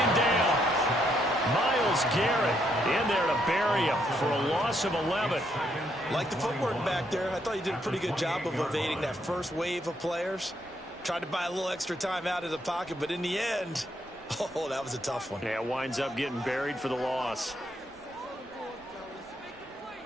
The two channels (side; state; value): both; normal; correlation 0.75